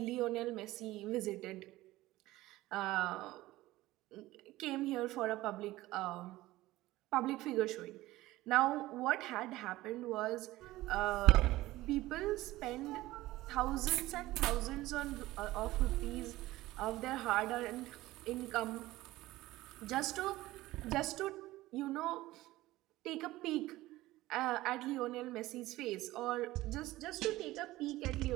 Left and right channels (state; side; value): quieter; left; 17.4 dB